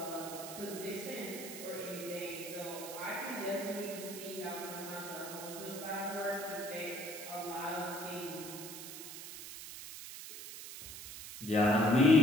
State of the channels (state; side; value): noise; right; hiss, 10 dB below the sound